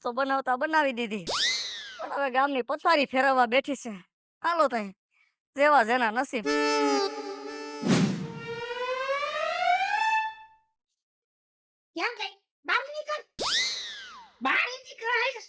તો બનાવતા બનાવી દીધી, પણ હવે ગામની પથારી ફેરવવા બેઠી છે. હાલો તઈ, જેવા જેના નસીબ. ક્યાં ગઈ? બહાર નીકળ. બહાર નીકળ.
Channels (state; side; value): identical; both; correlation 1.00